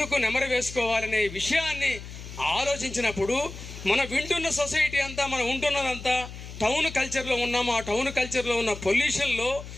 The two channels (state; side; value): noise; left; hum, 12 dB below the sound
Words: నెమరు వేసుకోవాలనే విషయాన్ని ఆలోచించినప్పుడు మన వింటున్న సొసైటీ అంతా, మనం ఉంటున్నదంతా టౌన్ కల్చర్లో ఉన్నాము. ఆ టౌన్ కల్చర్లో ఉన్న పొల్యూషన్లో